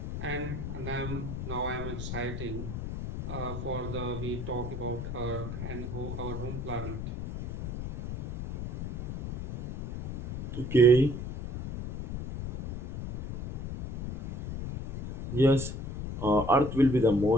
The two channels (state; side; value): noise; left; rumble, 6 dB below the sound